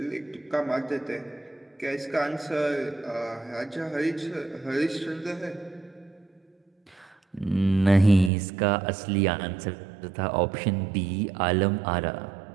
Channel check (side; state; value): left; drops out; at 8.3 s